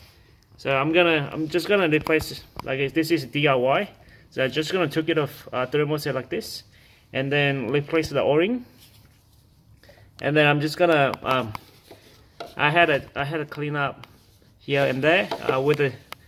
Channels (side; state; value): both; identical; correlation 1.00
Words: So I'm just gonna replace, like, this is DIY. So I'm just gonna take it off thermostat like this, and then replace the O-ring. And then I'm just gonna I had a clean up here and there with a